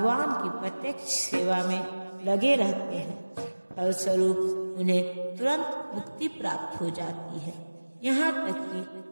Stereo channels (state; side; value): inverted; both; correlation -1.00